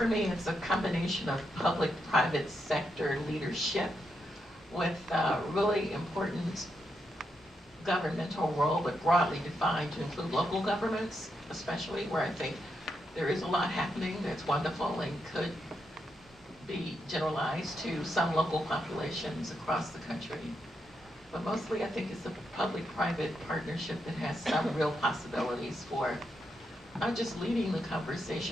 me, it's a combination of public-private sector leadership with really important governmental role, but broadly defined to include local governments, especially where I think there is a lot happening that's wonderful and could be generalized to some local populations across the country. But mostly I think it's a public-private partnership that has some real possibilities for not just leading the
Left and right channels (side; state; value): both; normal; correlation 0.82